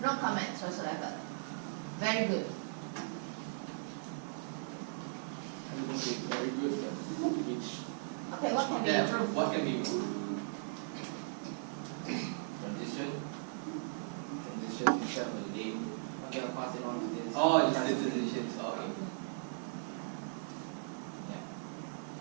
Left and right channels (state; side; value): silent; left; digital silence